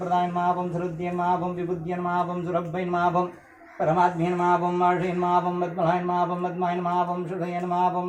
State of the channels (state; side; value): identical; both; correlation 1.00